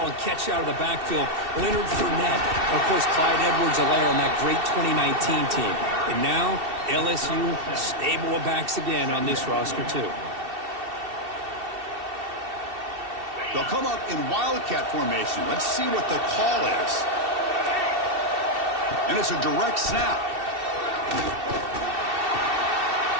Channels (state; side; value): late; left; 2.7 ms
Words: and catch out of the backfield. Leonard Fournette. And, of course, Clyde Edwards-Helaire on that great 2019 team. And now, LSU stable of backs again on this roster, too. They'll come up in Wildcat formation. Let's see what the call is. And it's a direct snap.